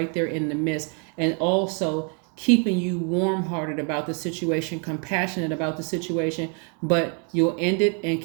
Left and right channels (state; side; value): quieter; left; 39.1 dB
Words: there in the midst, and also keeping you warm-hearted about the situation, compassionate about the situation, but you'll end it and